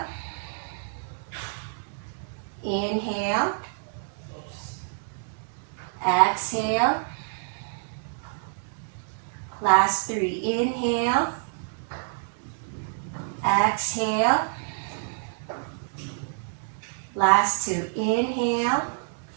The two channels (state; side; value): silent; left; digital silence